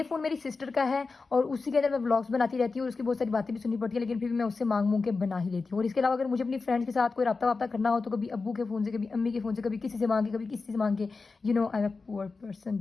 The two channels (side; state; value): right; quieter; 4.2 dB